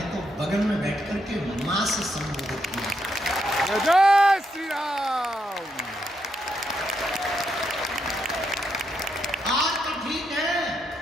तो बगल में बैठ करके मां से संबोधित किया। जय श्री राम। आज तो ठीक है,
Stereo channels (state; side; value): normal; both; correlation 0.79